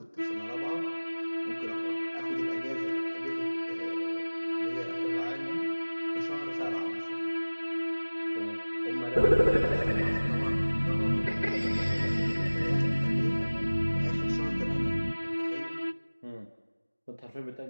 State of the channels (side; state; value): both; inverted; correlation -1.00